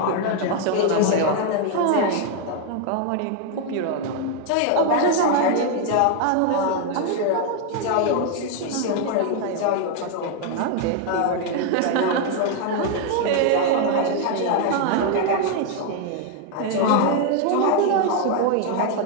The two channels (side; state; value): both; different; correlation 0.01